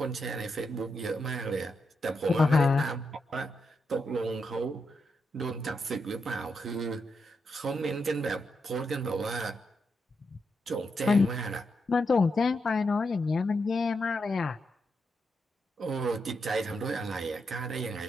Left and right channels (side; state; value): both; normal; correlation 0.83